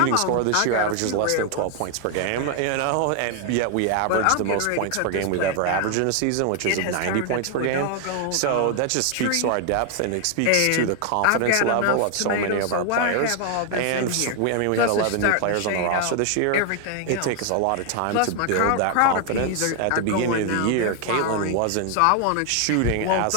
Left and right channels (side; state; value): both; different; correlation 0.00